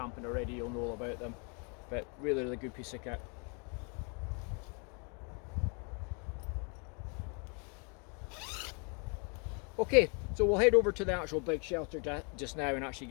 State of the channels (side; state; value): right; quieter; 35.9 dB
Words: already, you'll know all about them. But really good piece of kit. Okay, so we'll head over to the actual big shelter just now and actually